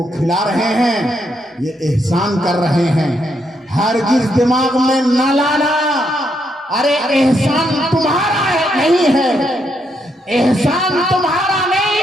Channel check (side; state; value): both; normal; correlation 0.77